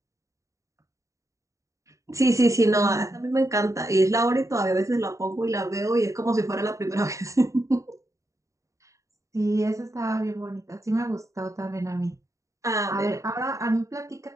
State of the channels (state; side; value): late; left; 0.15 ms